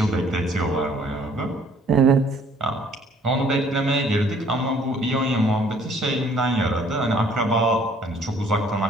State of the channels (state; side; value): normal; both; correlation 0.59